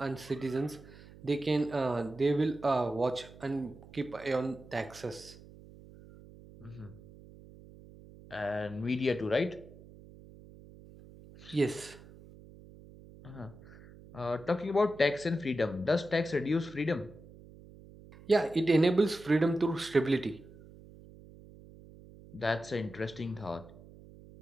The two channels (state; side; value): noise; right; hum, 20 dB below the sound